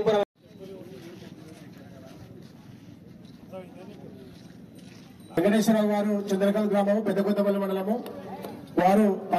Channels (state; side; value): identical; both; correlation 1.00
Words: వెంకటేశ్వరరావు గారు చంద్రకాంత్ గ్రామం పెద్దకొత్తపల్లి మండలము. వారు